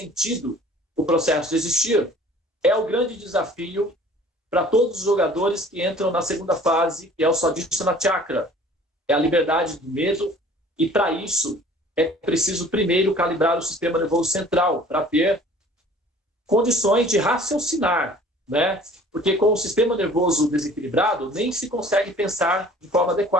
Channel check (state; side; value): normal; both; correlation 0.50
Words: o processo de existir, é o grande desafio para todos os jogadores que entram na segunda fase, que é o Swadhisthana Chakra. É a liberdade do medo, e para isso é preciso primeiro calibrar o sistema nervoso central, para ter condições de raciocinar, né? Porque com o sistema nervoso desequilibrado, nem se consegue pensar de forma